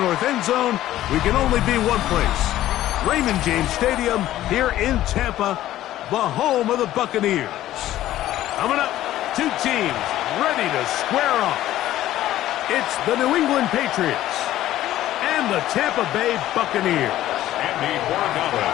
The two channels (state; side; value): quieter; right; 13.9 dB